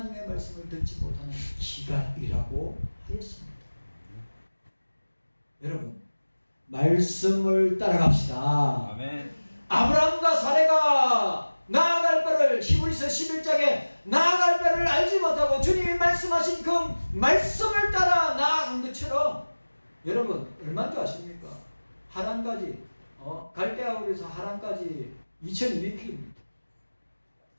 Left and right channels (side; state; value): both; inverted; correlation -1.00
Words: 말씀을 듣지 못하는 기갈이라고 하였습니다. 여러분, 말씀을 따라갑시다. 아멘. 아브라함과 사레가 나아갈 바를 히브리서 11장에 나아갈 바를 알지 못하고 주님이 말씀하신 그 말씀을 따라 나아간 것처럼 여러분 얼마인 줄 아십니까? 하란까지 갈대아울에서 하란까지 2200km